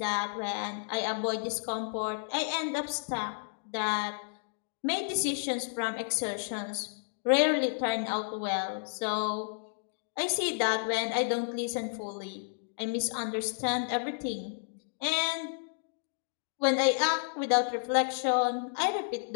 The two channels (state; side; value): silent; right; digital silence